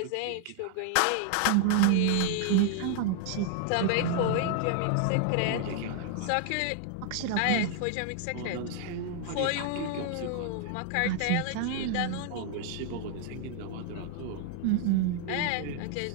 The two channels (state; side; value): different; both; correlation 0.00